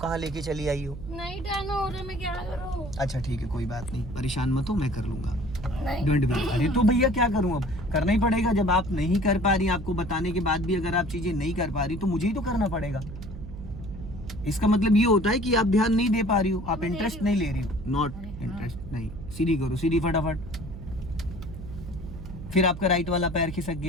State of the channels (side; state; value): right; noise; hum, 11 dB below the sound